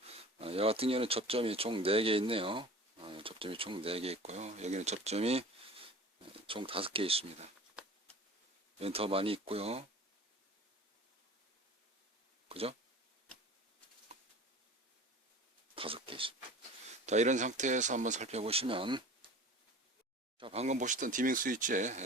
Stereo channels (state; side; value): normal; both; correlation 0.40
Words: 이 같은 경우는 접점이 총 4개 있네요. 접점이 총 4개 있고요. 여기는 접점이 총 5개 있습니다. 여기는 더 많이 있고요. 그죠? 5개 있습니다. 자, 이런 상태에서 한번 살펴보시면, 자, 방금 보셨던 디밍